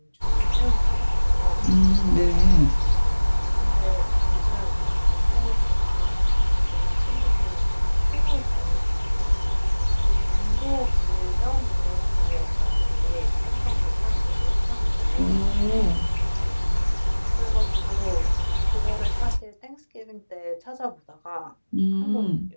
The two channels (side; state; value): both; inverted; correlation -1.00